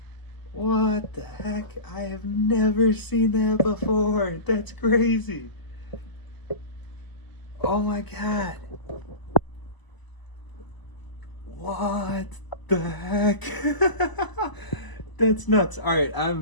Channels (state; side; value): late; right; 1.0 ms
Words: What the heck? I have never seen that before. That's crazy. Oh my God. What the heck? That's nuts. All right,